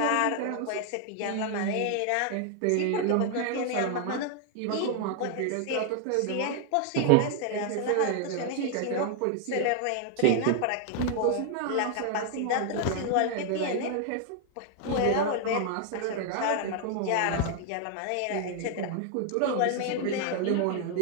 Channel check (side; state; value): both; different; correlation 0.00